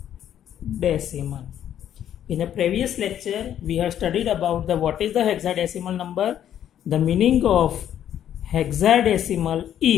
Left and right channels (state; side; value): quieter; right; 10.4 dB